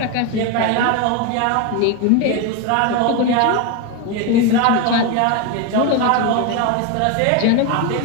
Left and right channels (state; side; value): different; both; correlation 0.03